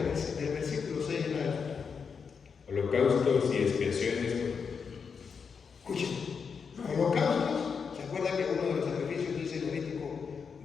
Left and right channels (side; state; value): right; quieter; 6.0 dB